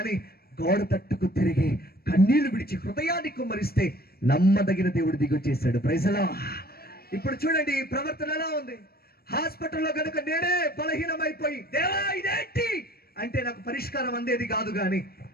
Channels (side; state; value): right; late; 0.45 ms